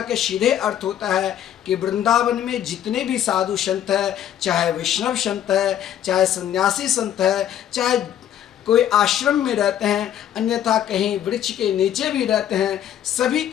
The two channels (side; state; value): right; quieter; 10.6 dB